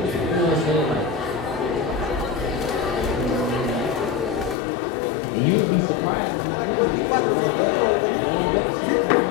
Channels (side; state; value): right; drops out; at 4.5 s